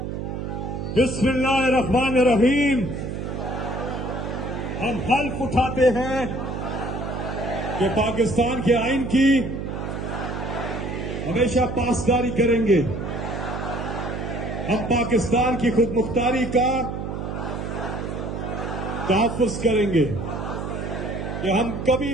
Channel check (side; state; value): right; noise; hum, 5 dB below the sound